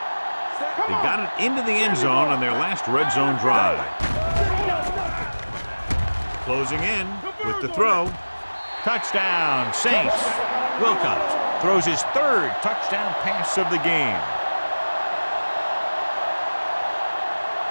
They got it into the end zone on their last red zone drive. Closing in with the throw. Touchdown, Saints. Wilcox throws his 3rd touchdown pass of the game.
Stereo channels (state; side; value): inverted; both; correlation -1.00